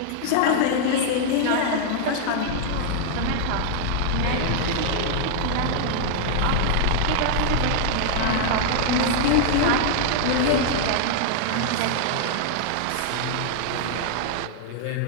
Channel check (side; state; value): both; different; correlation -0.01